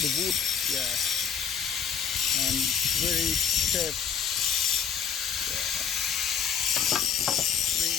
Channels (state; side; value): quieter; right; 7.4 dB